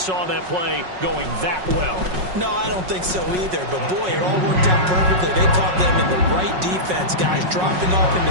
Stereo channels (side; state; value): left; late; 5.4 ms